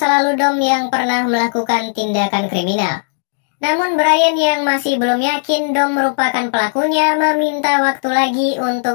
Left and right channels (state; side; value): silent; right; digital silence